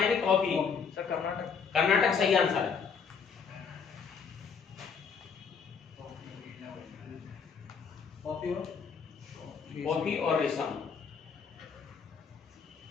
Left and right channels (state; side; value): quieter; right; 6.1 dB